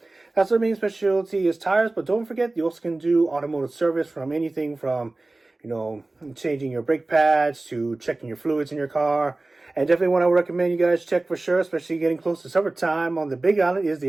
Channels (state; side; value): quieter; left; 3.0 dB